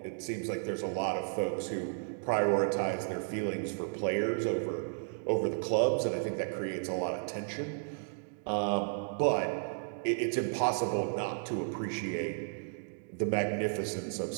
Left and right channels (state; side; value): silent; left; digital silence